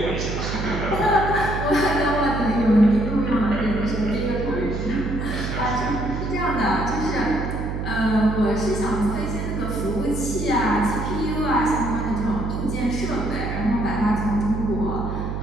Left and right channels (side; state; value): right; noise; hum, 3 dB below the sound